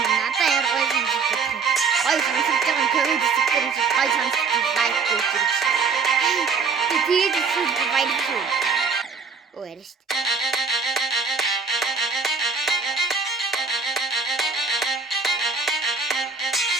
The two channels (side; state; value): left; quieter; 5.1 dB